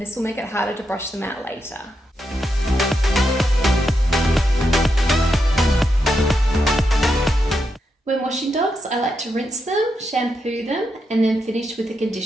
this will make it harder to brush them out later. When washing dogs, I like to rinse them, shampoo them, and then finish with a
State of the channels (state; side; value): normal; both; correlation 0.84